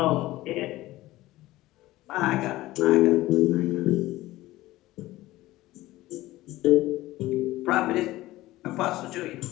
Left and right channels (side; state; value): right; quieter; 17.2 dB